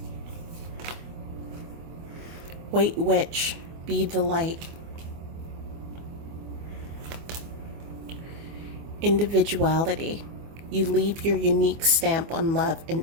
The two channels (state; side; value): late; left; 25 ms